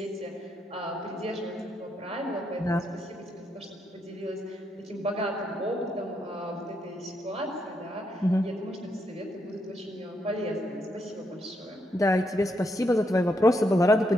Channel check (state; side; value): normal; both; correlation 0.78